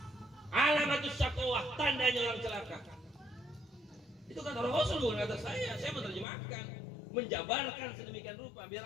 Alamatus syaqawah, tandanya orang celaka. Itu kata Rasul, bukan kata saya menerjemahkan, menjabarkan sedemikian rupa biar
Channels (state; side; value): drops out; right; at 6.2 s